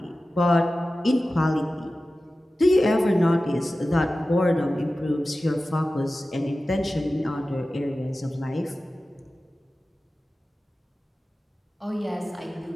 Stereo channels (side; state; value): both; normal; correlation 0.95